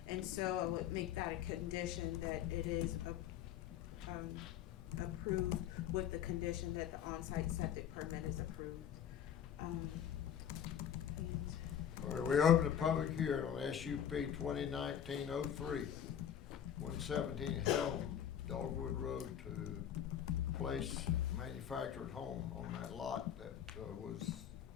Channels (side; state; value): right; quieter; 9.6 dB